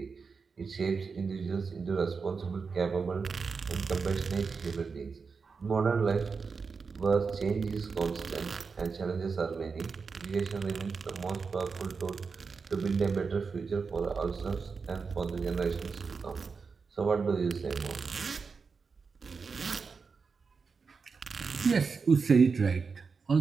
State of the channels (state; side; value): quieter; left; 5.1 dB